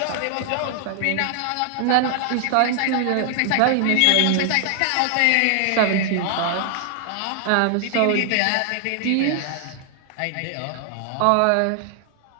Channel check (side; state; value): both; different; correlation 0.00